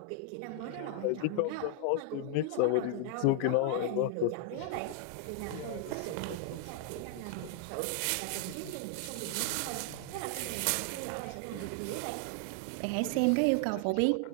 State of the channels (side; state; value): both; different; correlation 0.00